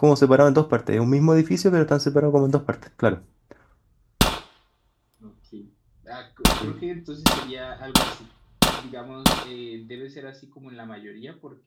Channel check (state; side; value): identical; both; correlation 1.00